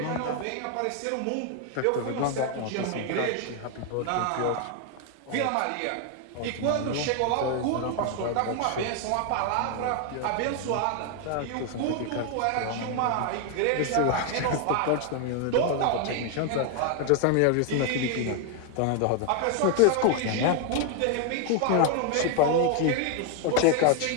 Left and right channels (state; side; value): different; both; correlation 0.00